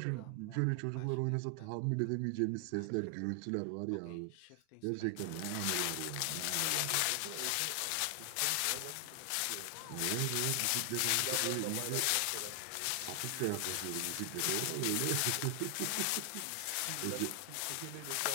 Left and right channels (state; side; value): different; both; correlation 0.00